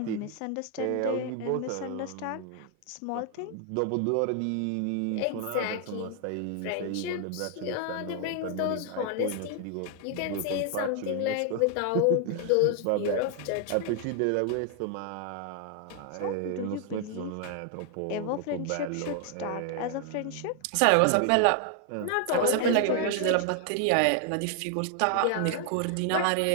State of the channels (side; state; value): both; different; correlation 0.00